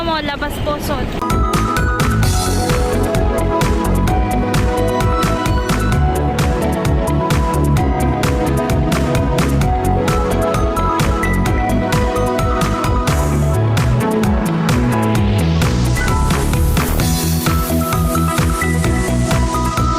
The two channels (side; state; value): both; identical; correlation 1.00